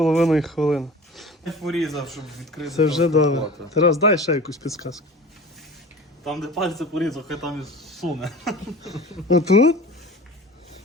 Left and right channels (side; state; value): both; normal; correlation 0.38